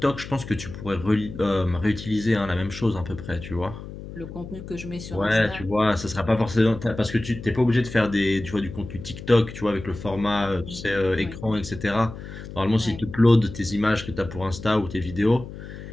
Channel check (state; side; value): noise; left; hum, 12 dB below the sound